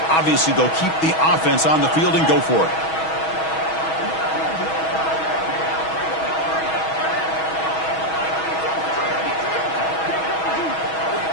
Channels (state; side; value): late; right; 6.2 ms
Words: Obviously, they'll keep the offense on the field and go for it.